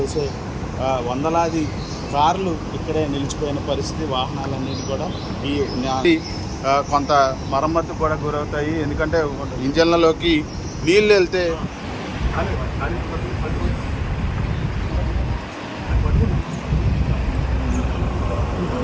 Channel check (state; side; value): identical; both; correlation 1.00